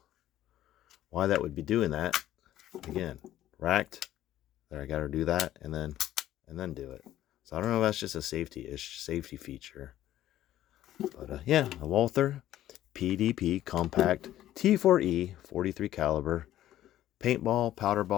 why that would be doing that. Again, racked. There, I got to do that and then do it. So I don't know if that's just a safety feature. But yeah, a Walther PDP Compact T4E 43 caliber paintball, powder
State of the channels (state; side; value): quieter; right; 13.2 dB